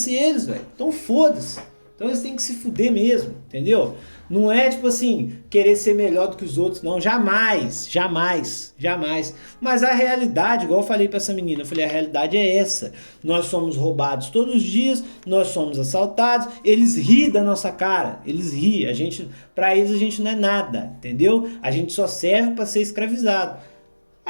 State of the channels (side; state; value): both; inverted; correlation -1.00